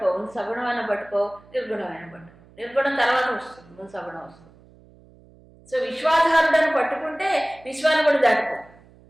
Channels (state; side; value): noise; right; hum, 26 dB below the sound